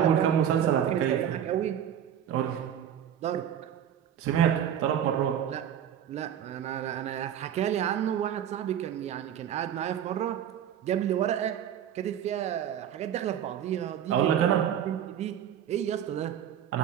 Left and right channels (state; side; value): quieter; left; 9.7 dB